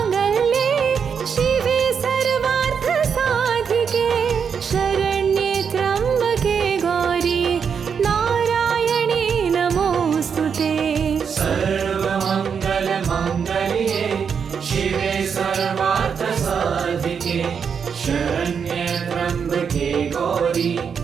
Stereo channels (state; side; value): quieter; left; 6.7 dB